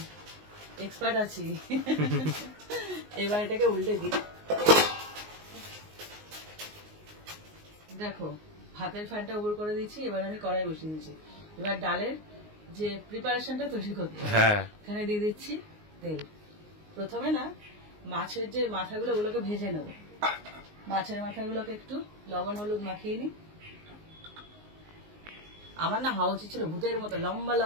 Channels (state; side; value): late; left; 19 ms